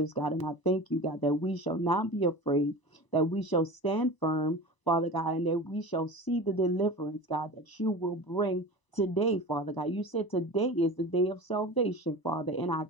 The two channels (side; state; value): right; late; 1.0 ms